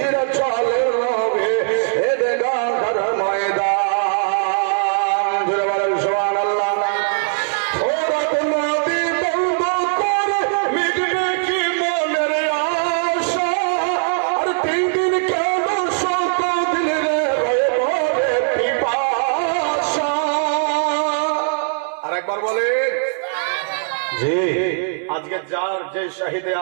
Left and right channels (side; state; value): left; silent; 66 dB below the other